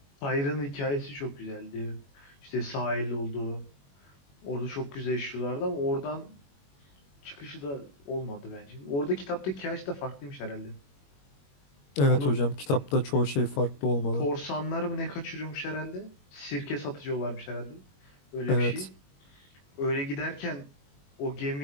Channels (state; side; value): late; right; 21 ms